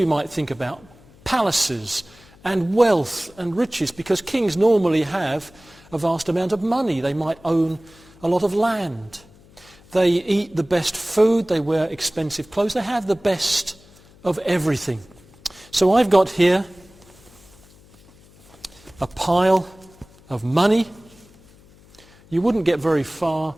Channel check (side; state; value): left; noise; hum, 26 dB below the sound